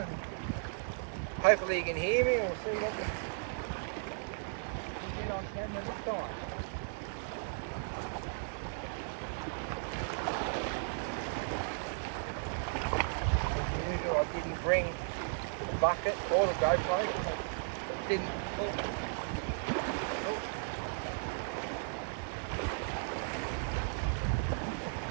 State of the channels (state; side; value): silent; left; digital silence